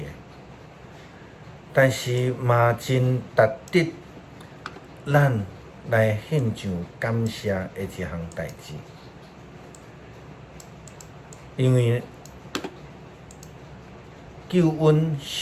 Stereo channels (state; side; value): identical; both; correlation 1.00